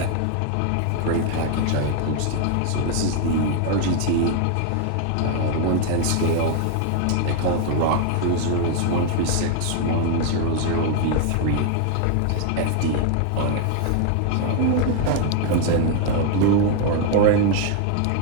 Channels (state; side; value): different; both; correlation 0.00